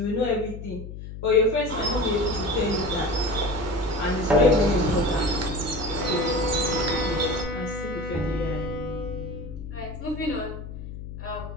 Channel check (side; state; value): left; noise; hum, 10 dB below the sound